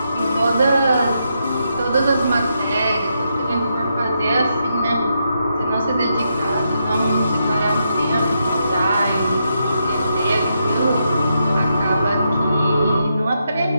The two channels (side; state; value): both; inverted; correlation -0.82